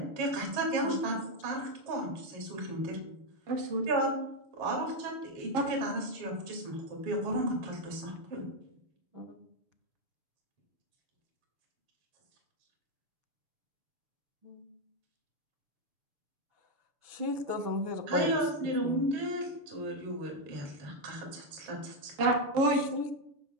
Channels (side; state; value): left; late; 6.8 ms